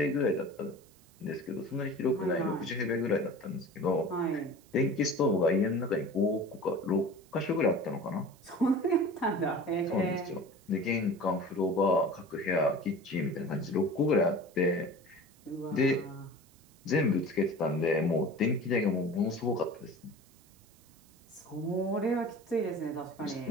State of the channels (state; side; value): noise; right; hiss, 28 dB below the sound